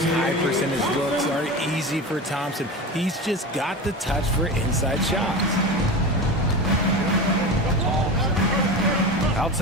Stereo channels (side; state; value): both; normal; correlation 0.27